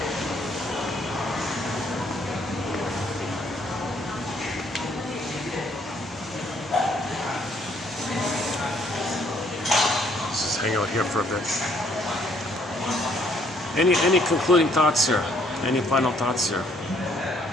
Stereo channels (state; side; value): normal; both; correlation 0.66